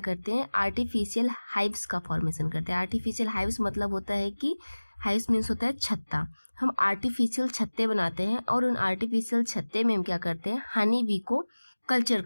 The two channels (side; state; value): both; inverted; correlation -1.00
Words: हैं, आर्टिफिशियल हाइव्स का फॉर्मेशन करते हैं। आर्टिफिशियल हाइव्स मतलब होता है कि हाइव्स मीन्स होता है छत्ता। हम आर्टिफिशियल छत्ते बनाते हैं और उन आर्टिफिशियल छत्ते में हम क्या करते हैं, हनी बी को कल्चर